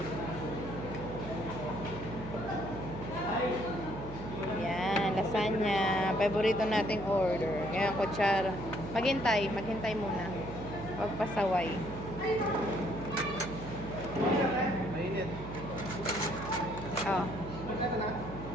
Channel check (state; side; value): noise; right; hum, 10 dB below the sound